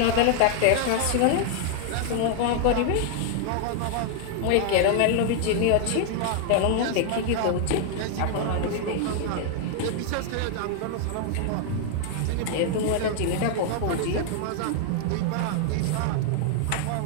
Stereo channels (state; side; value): different; both; correlation 0.00